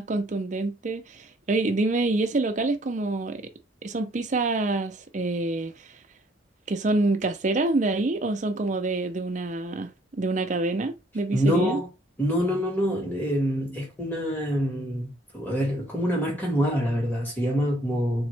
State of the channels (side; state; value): both; normal; correlation 0.62